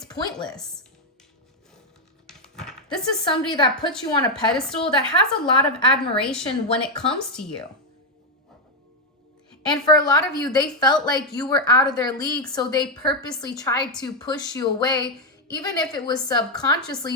pointless. This is somebody that puts you on a pedestal, that has a lot of admiration when it comes to you. And for a lot of you, they felt like you were out of their league, so they purposely tried to push you away, even if it was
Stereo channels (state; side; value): normal; both; correlation 0.03